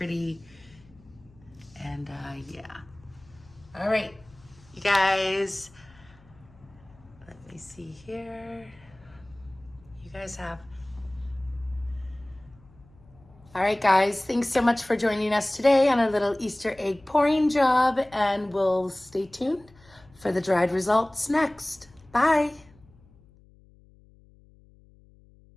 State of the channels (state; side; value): noise; left; hum, 27 dB below the sound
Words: And yeah. All right, you guys. Let me see here. You guys have. All right, guys, thanks so much for joining us today on a little Easter egg pouring job, and we'll stay tuned for the dried results next. Bye.